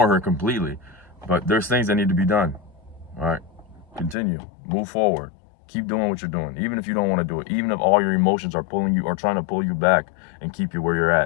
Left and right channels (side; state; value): right; drops out; at 4.2 s